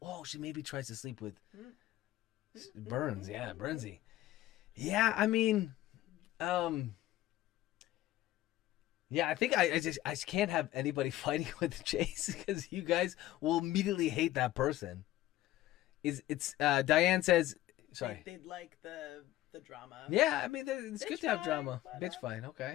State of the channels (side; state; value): right; quieter; 14.9 dB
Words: she maybe tries to sleep with Burns. Yeah, Burnsy. Yeah, I mean, yeah, I think I just can't have anybody fighting with Chase because you guys will immediately hate that person. It's Diane says. Sorry. They'd like the drama. Yeah, I mean, it's good to have Bitch drama. fight, Bitch fight,